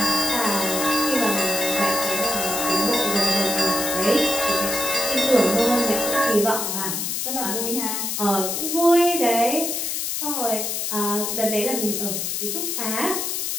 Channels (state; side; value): noise; left; hiss, 1 dB below the sound